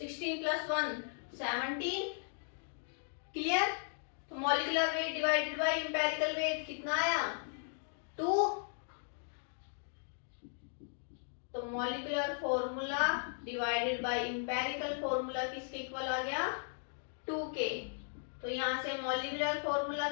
+ 1 17। क्लियर? तो molecular weight divided by empirical weight कितना आया, 2। तो molecular formula divided by empirical formula किसके इक्वल आ गया, 2 के। तो यहां से मॉलिक्यूलर फॉर्मूला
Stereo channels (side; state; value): right; silent; digital silence